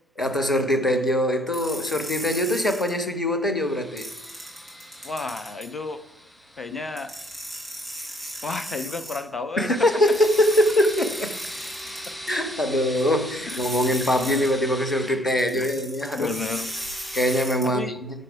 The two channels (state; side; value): normal; both; correlation 0.62